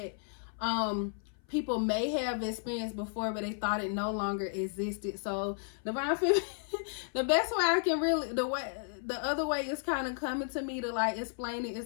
people may have experienced before, but they thought it no longer existed. So Divine Feminine, the best way I can really, the other way is kind of coming to me to like explain it,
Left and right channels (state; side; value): silent; right; 56 dB below the other